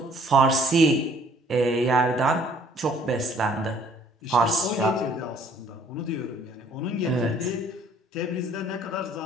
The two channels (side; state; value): both; normal; correlation 0.59